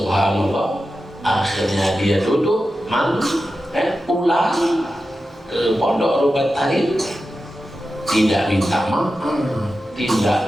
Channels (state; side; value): normal; both; correlation 0.92